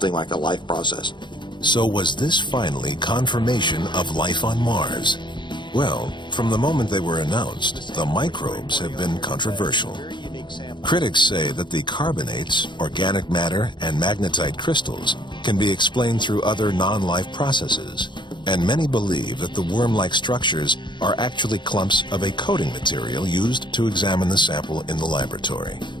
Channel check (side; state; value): right; late; 0.22 ms